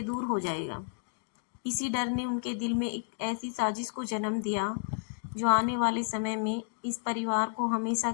दूर हो जाएगा। इसी डर ने उनके दिल में एक ऐसी साजिश को जन्म दिया जो आने वाले समय में इस परिवार को हमेशा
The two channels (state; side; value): silent; right; digital silence